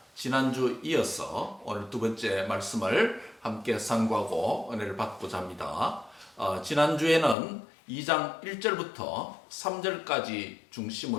지난주 이어서 오늘 두 번째 말씀을 함께 상고하고 은혜를 받고자 합니다. 지난주에는 2장 1절부터 3절까지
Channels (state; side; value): drops out; right; at 7.4 s